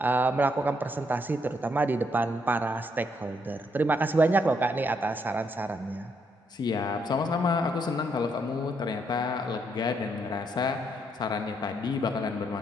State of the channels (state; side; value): normal; both; correlation 0.74